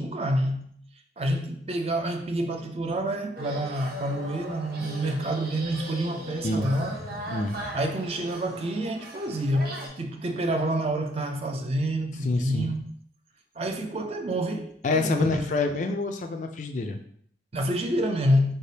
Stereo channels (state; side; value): normal; both; correlation 0.67